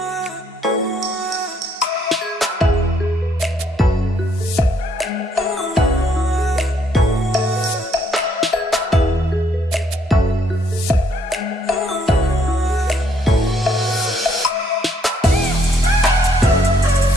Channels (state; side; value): normal; both; correlation 0.68